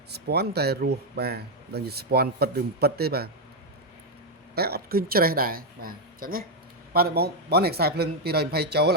ស្ពាន់តែរស់បាទដឹងជាស្ពាន់ពិតឬមិនពិតទេបាទតែអត់ឃើញច្រេះដែរបាទអញ្ចឹងណាបាទបងនេះខ្សែភ្លើង220ចូល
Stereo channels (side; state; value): both; normal; correlation 0.00